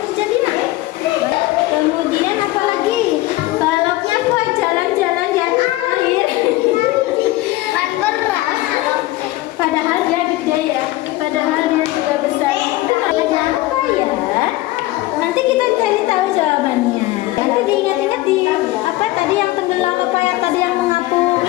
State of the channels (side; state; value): right; quieter; 17.9 dB